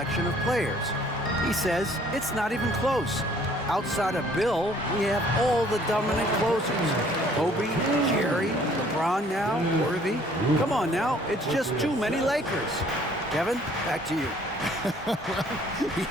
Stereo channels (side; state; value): both; normal; correlation 0.58